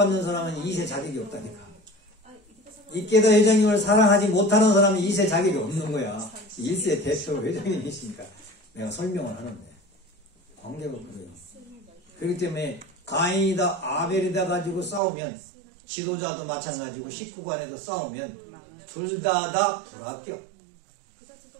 사람은 2세 자격이 없다니까. 이케다 회장님을 사랑하지 못하는 사람은 2세 자격이 없는 거야. 1세 대표 회장님이시니까 내가 설명을 하는데 관계가 그래요. 그렇기 때문에 가인이다 아벨이다 가지고 싸우면 지도자도 마찬가지고 식구간에도 싸우면 둘 다 불합격.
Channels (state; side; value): drops out; left; at 15.0 s